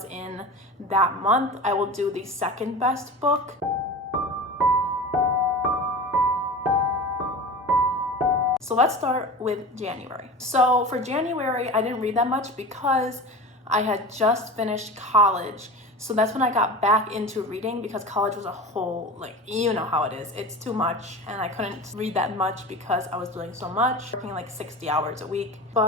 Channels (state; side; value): normal; both; correlation 0.33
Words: in that month, I will do the second best book. So let's start with January. So for January, I didn't read that much because I had just finished college. So that's when I got back into reading because college was a whole, like, you know how it is. It's too much and I couldn't read that much because I was doing so much, working like 60 hours a week.